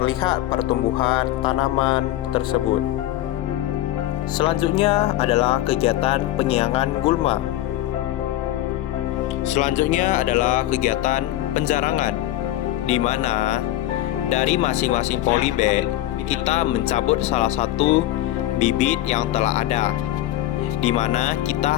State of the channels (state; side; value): quieter; right; 14.3 dB